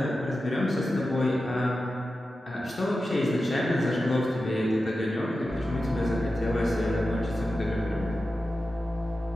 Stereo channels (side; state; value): both; normal; correlation 0.92